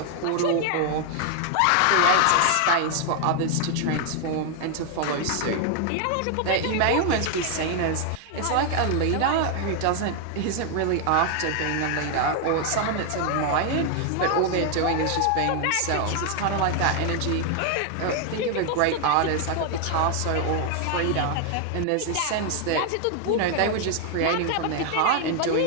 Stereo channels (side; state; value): both; different; correlation 0.00